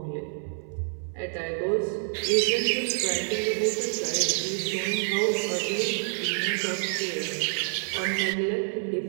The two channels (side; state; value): left; silent; 60 dB below the other